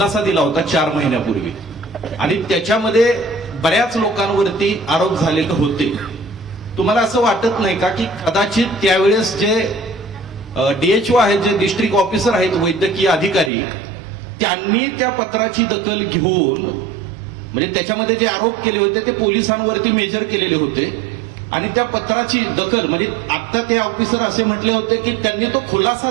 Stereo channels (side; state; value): left; drops out; at 13.5 s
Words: दिला होता 4 महिन्यापूर्वी, आणि त्याच्यामध्ये बऱ्याच लोकांवरती आरोप झालेले होते. तुम्हाला असं वाटत नाही का की कदाचित त्यावेळेस जे DHO आहेत, जे डिस्ट्रिक्ट ऑफिसर आहेत, वैद्यकीय अधिकारी, त्यांनी त्या पत्राची दखल घेऊन, म्हणजे त्याच्यामध्ये जे आरोप केले होते ते पोलिसांवरती मेजर केलेले होते, आणि त्या पत्राची दखल, म्हणजे आता ते ऑफिसर असे म्हटले होते की त्यांनी तो खुलासा